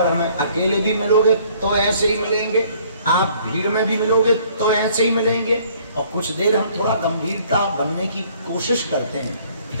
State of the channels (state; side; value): inverted; both; correlation -0.59